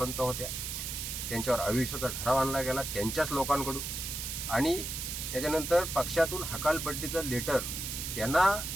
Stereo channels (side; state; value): right; noise; hiss, 5 dB below the sound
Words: होत्या. त्यांच्यावर अविश्वासाचा ठराव आणला गेला त्यांच्याच लोकांकडून, आणि त्याच्यानंतर पक्षातून हकालपट्टीचं लेटर त्यांना